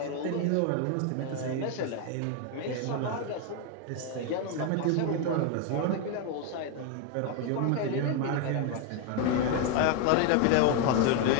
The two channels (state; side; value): different; both; correlation 0.01